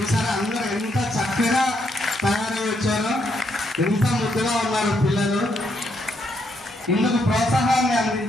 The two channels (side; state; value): both; normal; correlation 0.76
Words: అందరూ ఎంత చక్కగా తయారై వచ్చారో, ఎంత ముద్దుగా ఉన్నారు పిల్లలు. ఇందుకు ప్రోత్సాహాన్ని